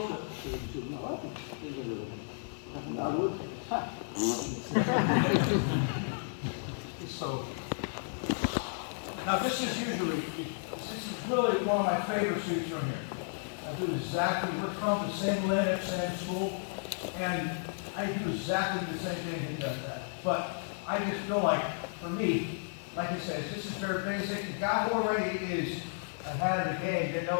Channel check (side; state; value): right; silent; 56 dB below the other